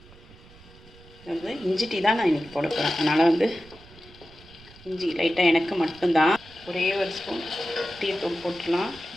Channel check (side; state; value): right; noise; rumble, 23 dB below the sound